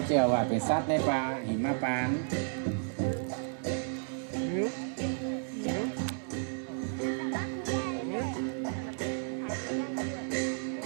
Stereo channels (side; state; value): left; silent; 56 dB below the other